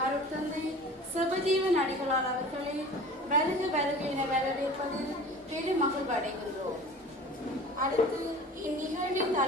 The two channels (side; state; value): both; normal; correlation 0.41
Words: அருட்தந்தை சிவஜீவன் அடிகளார் அவர்களை வருக என வரவேற்பதில் பெருமகிழ் அடைகின்றோம். அடுத்து இந்நிகழ்வின்